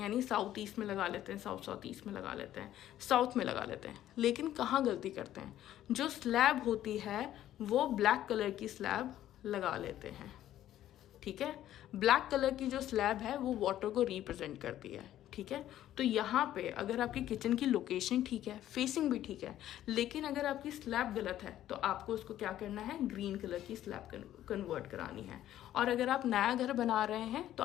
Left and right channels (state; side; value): quieter; right; 12.5 dB